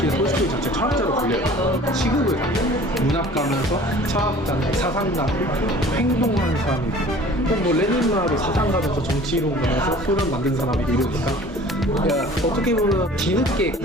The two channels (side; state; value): both; normal; correlation 0.47